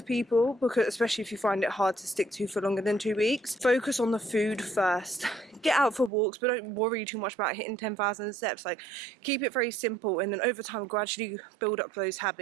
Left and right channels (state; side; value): drops out; left; at 6.1 s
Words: people, because especially if you find it hard to stick to for longer than 2 weeks, focus on the food first. Get out for walks, but don't worry too much about hitting 10,000 steps. Like, keep it very simple, and then over time gradually build up those